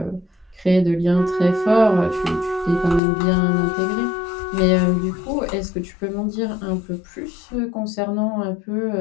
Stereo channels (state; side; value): drops out; right; at 3.0 s